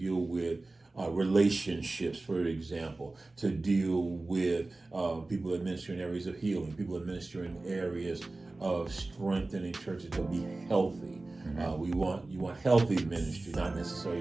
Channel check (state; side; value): quieter; left; 3.1 dB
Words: with relationships, for example, to deal with people that minister in areas of healing, people that minister in areas of strengthening churches to be healthy. You want healthy ministry, not